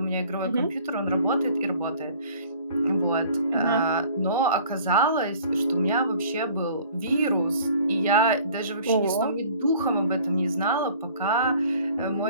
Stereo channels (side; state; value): both; inverted; correlation -0.51